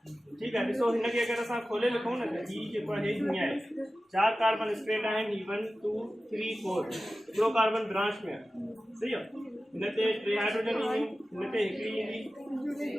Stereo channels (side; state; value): both; normal; correlation 0.95